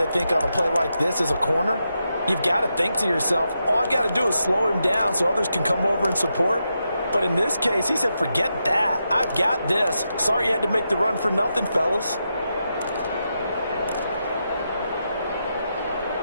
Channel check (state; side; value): inverted; both; correlation -0.86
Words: think on a play like this as a corner, you've got to think to yourself, all I've got to do is slow him down so others can come over and support. But in this case, he said, forget that. I've got this. Sorry you had to make the run for nothing, fellas.